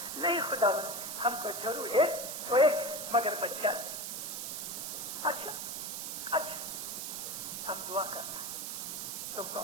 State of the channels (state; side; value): noise; right; hiss, 4 dB below the sound